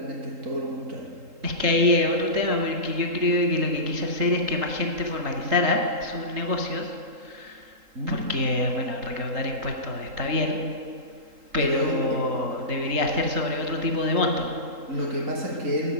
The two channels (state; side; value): late; left; 3.8 ms